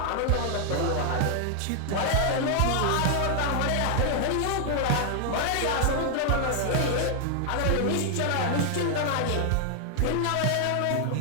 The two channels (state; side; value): different; both; correlation 0.00